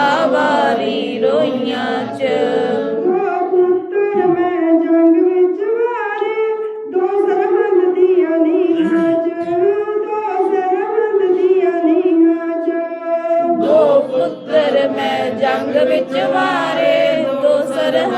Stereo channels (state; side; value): identical; both; correlation 1.00